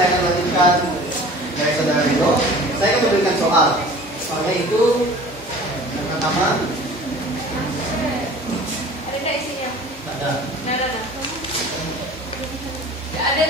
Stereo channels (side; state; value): both; normal; correlation 0.44